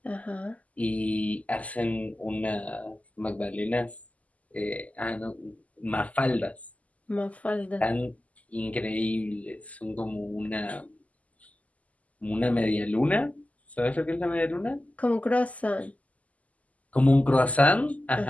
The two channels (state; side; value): late; right; 0.072 ms